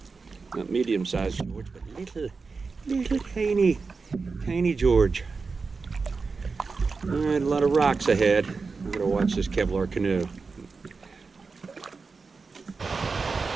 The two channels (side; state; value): left; quieter; 4.5 dB